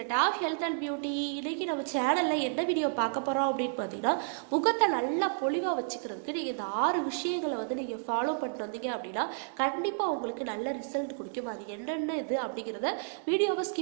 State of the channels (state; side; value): silent; left; digital silence